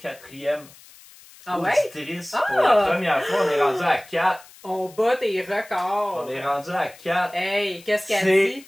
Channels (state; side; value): noise; left; hiss, 23 dB below the sound